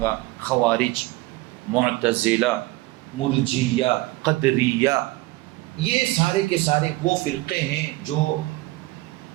خوارج، معتزلہ، مرجیہ، قدریہ، یہ سارے کے سارے وہ فرقے ہیں جو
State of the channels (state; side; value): quieter; left; 20.1 dB